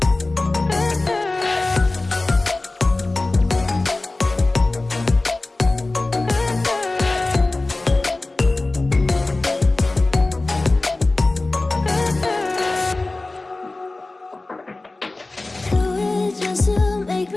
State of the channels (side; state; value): right; quieter; 3.1 dB